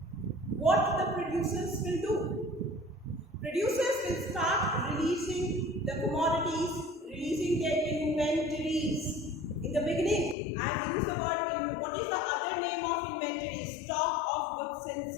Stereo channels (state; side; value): drops out; right; at 10.4 s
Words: what the producers will do? Producers will start releasing the commodities, releasing their inventories. In the beginning, I have used the word in what is the other name of inventory? Stock of goods and